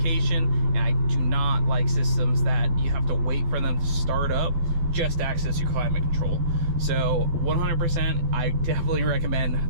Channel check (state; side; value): late; left; 12 ms